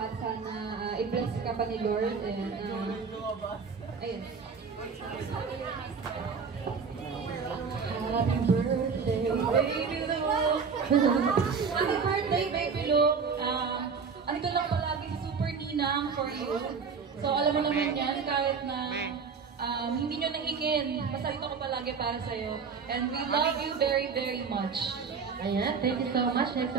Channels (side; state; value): left; quieter; 5.6 dB